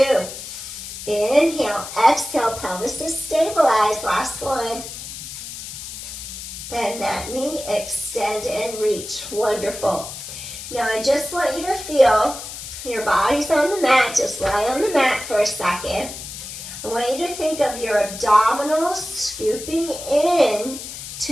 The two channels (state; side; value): noise; left; hiss, 10 dB below the sound